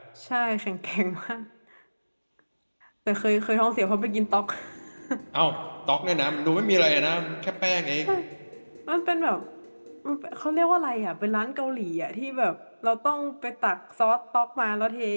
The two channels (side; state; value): both; inverted; correlation -1.00